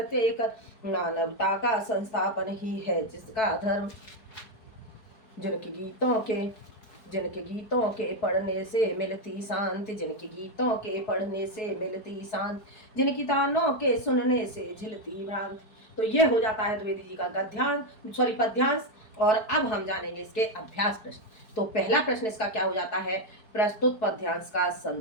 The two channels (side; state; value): right; late; 4.7 ms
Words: एक, मानवता का संस्थापन ही है जिसका धर्म। जिनके गीतों के पढ़ने से मिलती शांति, जिनके गीतों के पढ़ने से मिलती शांति, जिनकी तानों के सुनने से झिलती भ्रांति। तो ये हो जाता है द्विवेदी जी का पद्यांश। और अब हम जानेंगे इसके अभ्यास प्रश्न। तो पहला प्रश्न इसका क्या हो जाता है, प्रस्तुत पद्यांश का